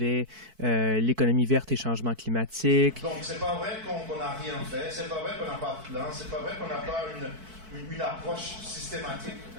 l'économie verte et changement climatique. Donc, c'est pas vrai qu'on n'a rien fait, c'est pas vrai qu'on n'a pas de plan, c'est pas vrai qu'on n'a pas une approche systématique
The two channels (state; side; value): late; left; 4.6 ms